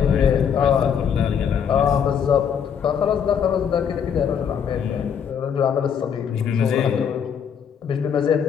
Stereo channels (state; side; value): quieter; right; 7.7 dB